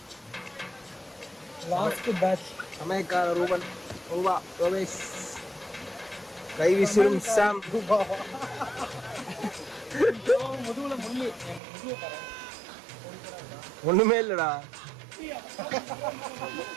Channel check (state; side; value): drops out; left; at 11.6 s